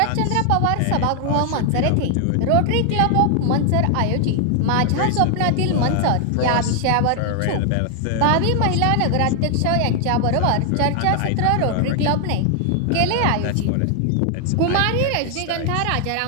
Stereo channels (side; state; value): both; different; correlation 0.00